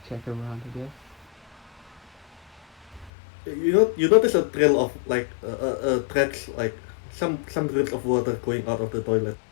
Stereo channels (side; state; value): right; drops out; at 3.1 s